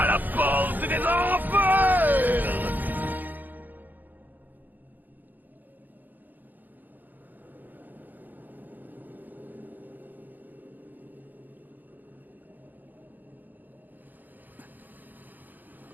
la porte des enfers.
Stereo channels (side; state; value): left; late; 0.086 ms